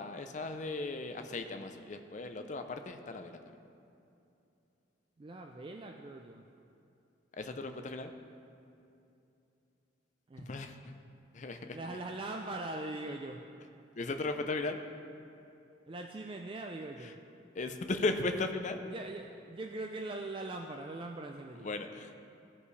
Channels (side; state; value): both; normal; correlation 0.37